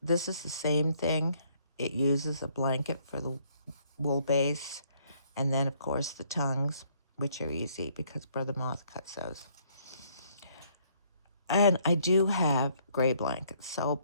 This is the same thing. It uses a blanket for the wool base, and then of course the tongues, which are easy because Brother Moth cuts those. And I do have gray blankets, so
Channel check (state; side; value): inverted; both; correlation -0.66